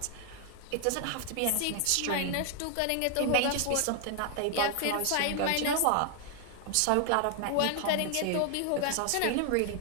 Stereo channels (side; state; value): both; different; correlation 0.00